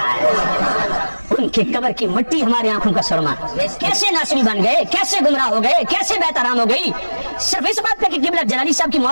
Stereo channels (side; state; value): both; inverted; correlation -1.00